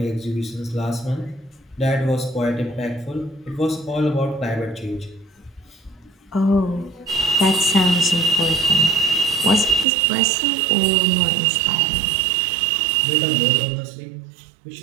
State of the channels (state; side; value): drops out; left; at 9.9 s